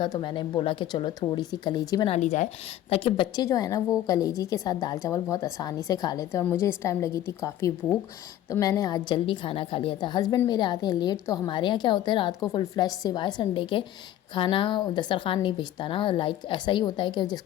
تو میں نے بولا کہ چلو تھوڑی سی کلیجی بنا لی جائے تاکہ بچے جو ہے نا وہ کلیجی کے ساتھ دال چاول بہت آسانی سے کھا لیتے ہیں، اور مجھے اس ٹائم لگی تھی کافی بھوک، تو میں نے آج جلدی کھانا کھا لیا تھا۔ ہسبینڈ میرے آتے ہیں لیٹ، تو ہمارے یہاں کیا ہوتا ہے رات کو فل فلیش سوائے سنڈے کے کھانا دسترخوان نہیں بھیجتا نا، لائک ایسا ہی ہوتا ہے کہ جس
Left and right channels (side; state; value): right; quieter; 12.5 dB